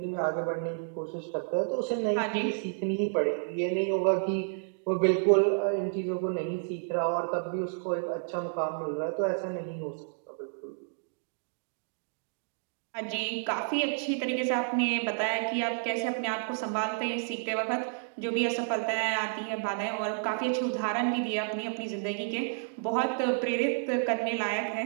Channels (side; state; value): left; silent; digital silence